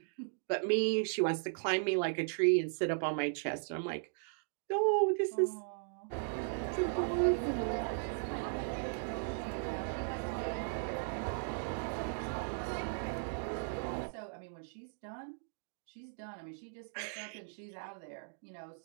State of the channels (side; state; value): left; silent; digital silence